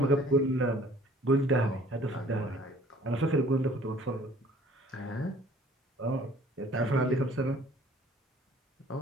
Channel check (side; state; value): both; normal; correlation 0.54